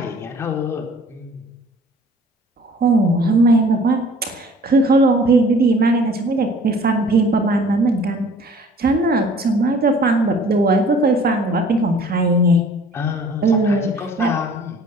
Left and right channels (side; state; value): both; normal; correlation 0.52